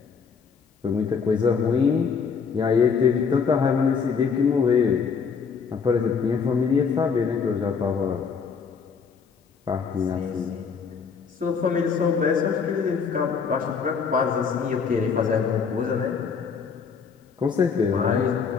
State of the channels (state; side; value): quieter; right; 5.9 dB